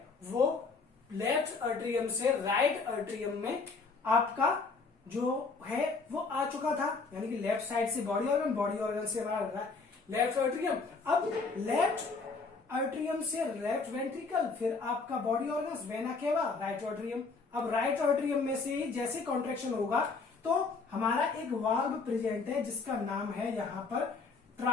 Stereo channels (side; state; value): right; quieter; 4.3 dB